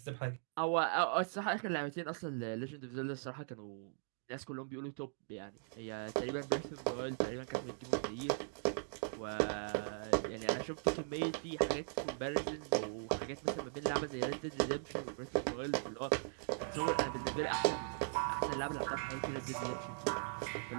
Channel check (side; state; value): left; silent; digital silence